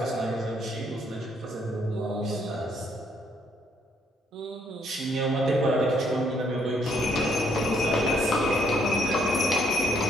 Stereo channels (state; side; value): normal; both; correlation 0.70